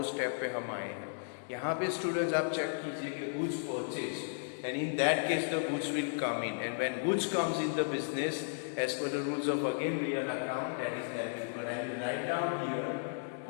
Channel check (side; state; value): right; silent; digital silence